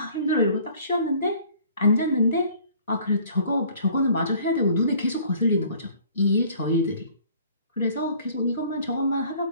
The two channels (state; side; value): inverted; both; correlation -0.54